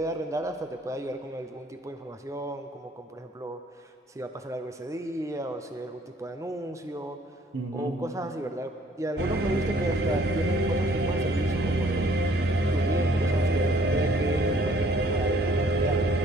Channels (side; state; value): both; normal; correlation 0.60